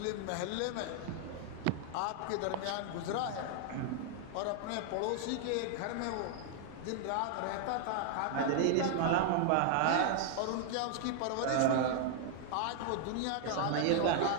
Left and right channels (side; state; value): both; different; correlation 0.00